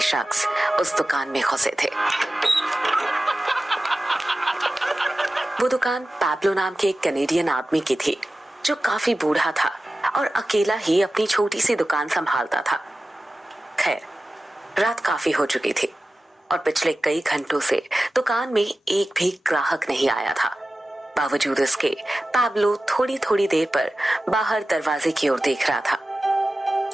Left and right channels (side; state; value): both; normal; correlation 0.95